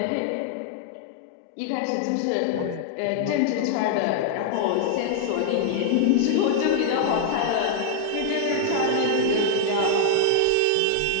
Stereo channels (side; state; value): both; different; correlation -0.01